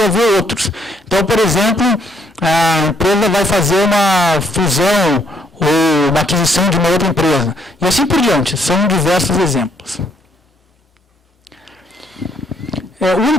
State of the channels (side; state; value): both; normal; correlation 0.69